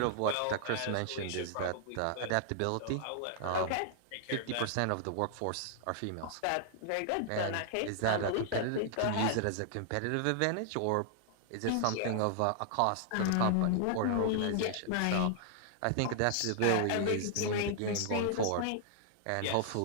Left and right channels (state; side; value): different; both; correlation -0.01